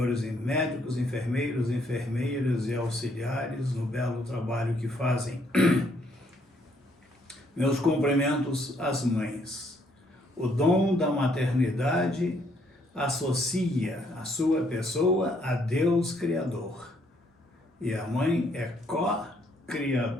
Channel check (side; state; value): both; normal; correlation 0.69